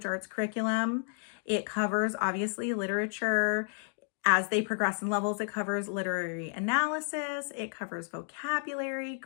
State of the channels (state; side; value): silent; right; digital silence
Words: arts curriculum. It covers obviously literature. As they progress in levels, it covers literary analysis, it covers vocabulary,